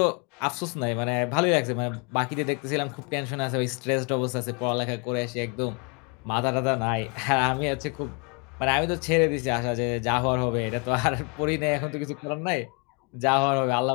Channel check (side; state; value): right; quieter; 34.5 dB